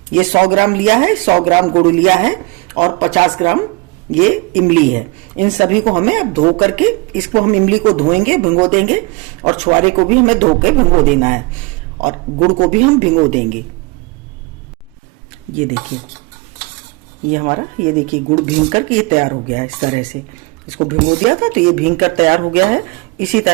ये 100 ग्राम लिया है, 100 ग्राम गुड़ लिया है और 50 ग्राम ये इमली है। इन सभी को हमें अब धो करके, इसको हम इमली को धोएंगे, भिगो देंगे और छुआरे को भी हमें धो के भिगो देना है और गुड़ को भी हम भिगो देंगे। ये देखिए ये हमारा, ये देखिए गुड़ भीग करके ये तैयार हो गया है। इस तरह से इसको भिगो दिया था तो ये भीग कर तैयार हो गया है। इसी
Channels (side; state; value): left; quieter; 25.5 dB